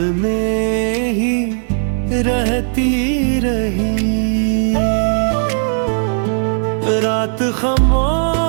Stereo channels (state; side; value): silent; left; 60 dB below the other